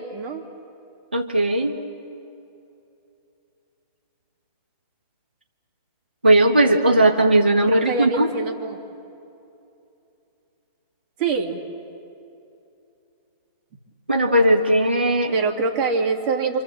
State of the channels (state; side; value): inverted; both; correlation -0.73